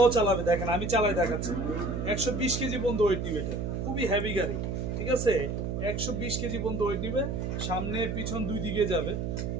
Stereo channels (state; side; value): noise; right; hum, 2 dB below the sound